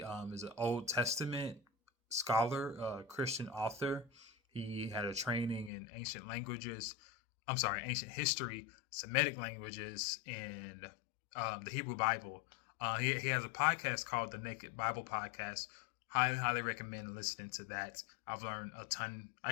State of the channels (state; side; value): drops out; right; at 5.7 s